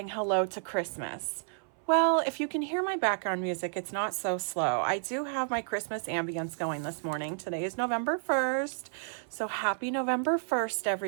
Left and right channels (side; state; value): left; silent; 57 dB below the other